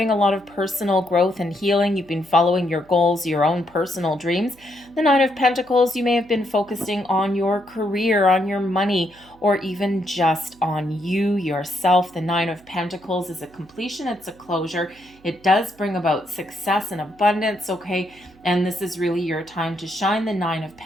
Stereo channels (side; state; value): right; noise; hum, 27 dB below the sound